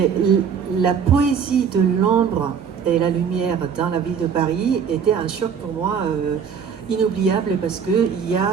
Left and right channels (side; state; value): left; quieter; 7.0 dB